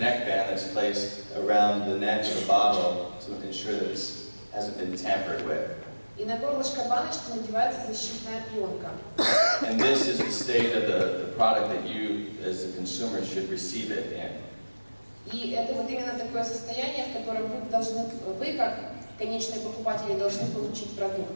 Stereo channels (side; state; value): both; inverted; correlation -1.00